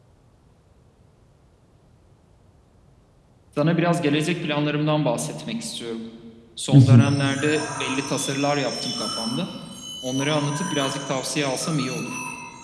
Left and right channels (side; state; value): both; identical; correlation 1.00